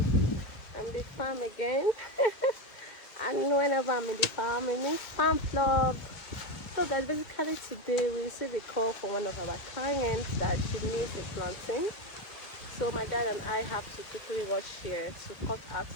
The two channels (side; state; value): right; late; 2.1 ms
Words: I'm in the farm again. And whenever I'm in the farm, it means farm vlog. So guys, basically today we received a call from one of our clients that she needs a plantain. So my dad and I have to quickly rush here to cut out